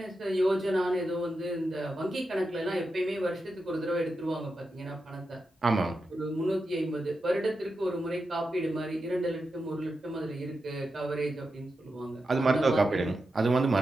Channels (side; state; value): both; normal; correlation 0.89